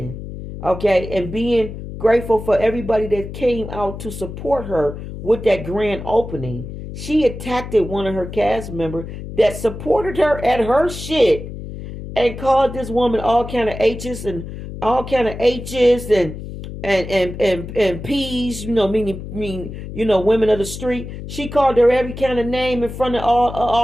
Okay, and being grateful for everybody that came out to support her with that grand opening. She attacked one of her cast members that supported her at her shit and called this woman all kind of H's and P's, meaning women of the street. She called her every kind of name in front of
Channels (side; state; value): left; noise; hum, 10 dB below the sound